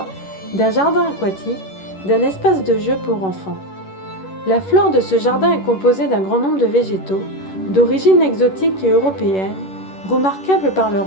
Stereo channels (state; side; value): late; right; 11 ms